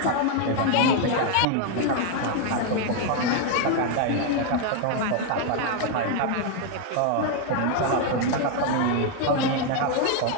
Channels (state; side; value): different; both; correlation 0.01